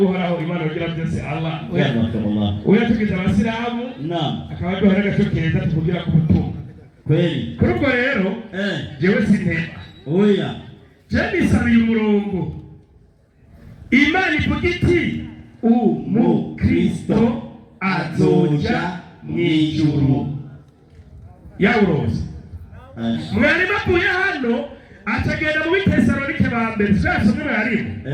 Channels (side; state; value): both; identical; correlation 1.00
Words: Imana ugira byose Allah uyatugize abasilamu akaba duhora gashokeza tuvugira ku butumwa kweli. Kuri ubwo rero jewe sintema oya jewe nisabiye umurongo Imana ivuga iti umukristo azoja mw'ijuru. Yawuroze mwari bavuye hano atagenda mu Bitesalonike ba mbere twasomye barimo